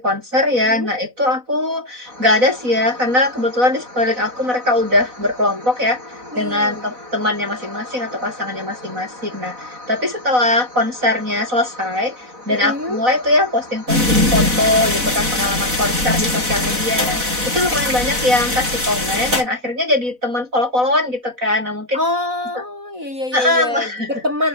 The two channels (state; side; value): late; left; 4.0 ms